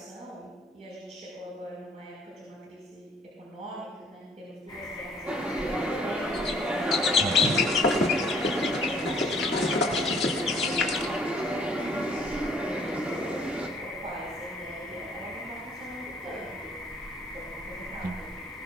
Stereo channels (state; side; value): normal; both; correlation 0.58